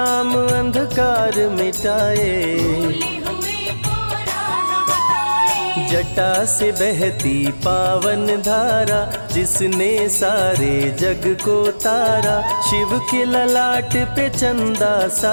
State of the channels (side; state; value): both; inverted; correlation -1.00